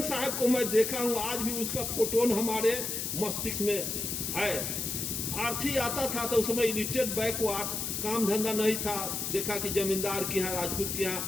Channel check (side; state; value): left; noise; hiss, 2 dB below the sound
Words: साहब को मैं देखा हूं, आज भी उसका फोटोन हमारे मस्तिष्क में है। आरती आता था तो उस समय इलिटरेट बैकवर्ड, काम धंधा नहीं था। देखा कि जमींदार के यहाँ, राजपूत के